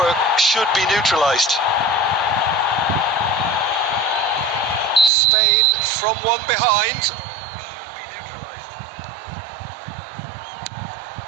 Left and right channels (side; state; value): left; drops out; at 5.1 s